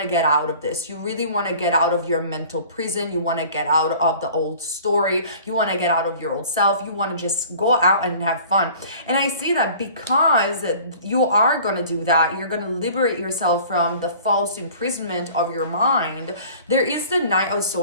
to get out of this. You really want to get out of your mental prison. You want to get out of the old story. You want to get out of your old self. You want to just go out and have fun. And I see that because you are going to do that, you're going to liberate yourself from the false imprisonment of your mind. There is the Knight of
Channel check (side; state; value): both; inverted; correlation -0.47